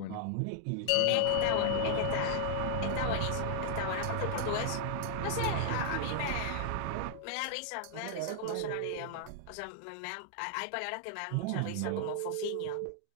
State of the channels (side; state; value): both; different; correlation 0.00